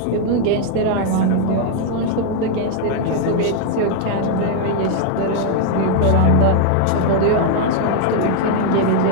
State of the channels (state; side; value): different; both; correlation 0.00